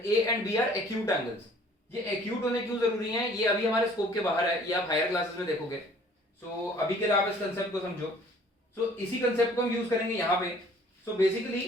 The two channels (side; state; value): both; normal; correlation 0.54